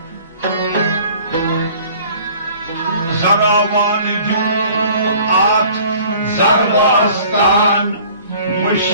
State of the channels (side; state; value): both; inverted; correlation -0.51